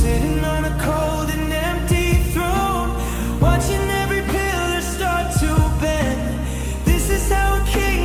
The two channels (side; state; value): both; identical; correlation 1.00